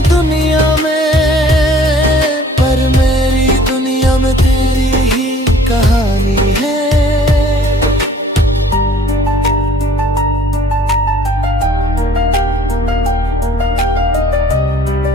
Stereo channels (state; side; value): normal; both; correlation 0.54